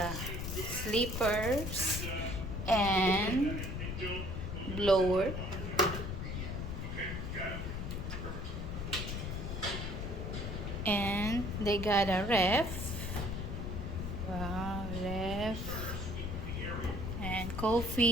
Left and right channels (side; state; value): left; noise; rumble, 4 dB below the sound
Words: sleepers and blower. And they got a ref. Wow, ref. And